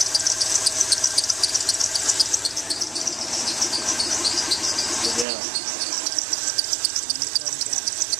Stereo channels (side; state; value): left; drops out; at 5.2 s